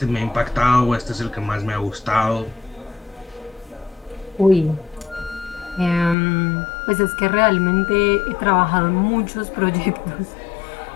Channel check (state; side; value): drops out; right; at 6.2 s